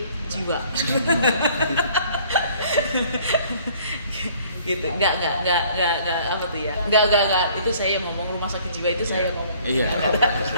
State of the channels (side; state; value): both; inverted; correlation -0.57